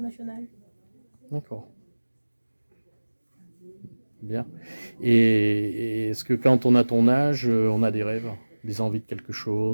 D'accord. Bien. Et est-ce que quand on a ton âge, on a des rêves, des envies de quelque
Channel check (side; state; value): both; inverted; correlation -1.00